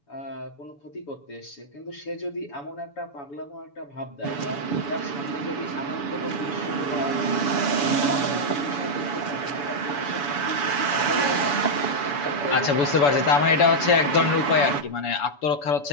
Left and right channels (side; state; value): right; late; 7.0 ms